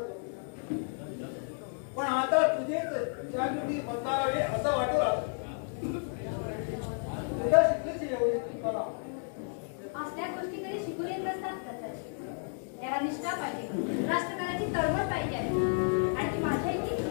पण आता तुझेच जागृती बदलावे असं वाटू लागलं. तुझ्या शिकलीच एवढी कला. असल्या गोष्टी कधी शिकून येत नसतात दत्ताजी. त्याला निष्ठा पाहिजे, राष्ट्रकाराची तळमळ पाहिजे आहे आणि ती माझ्या इतकी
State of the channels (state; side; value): silent; right; 56 dB below the other